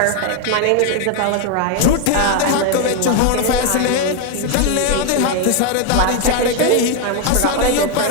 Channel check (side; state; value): both; different; correlation 0.01